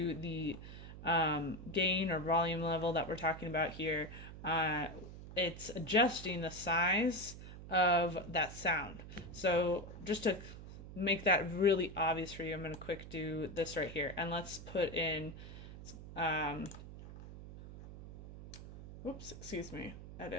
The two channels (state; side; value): noise; right; hum, 13 dB below the sound